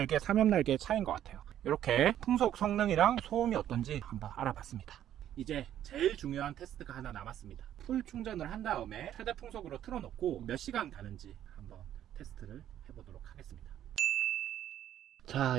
3옆 날개의 차이인 것 같아요. 이렇게 풍속 성능이랑 소음이 어떤지 한번 알아봤습니다. 이제 제일 중요한 테스트가 하나 남았습니다. 풀 충전을 한 다음에 최대 풍속으로 틀어놓고 몇 시간 가는지 한번 테스트를 해보도록 하겠습니다.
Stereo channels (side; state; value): left; quieter; 11.2 dB